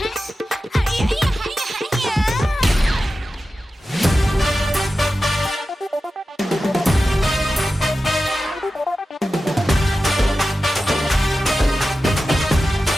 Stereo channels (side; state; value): both; normal; correlation 0.93